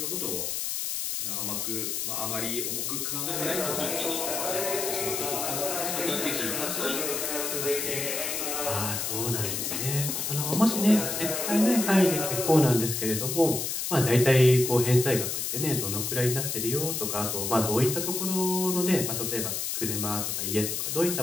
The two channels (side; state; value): left; noise; hiss, 2 dB below the sound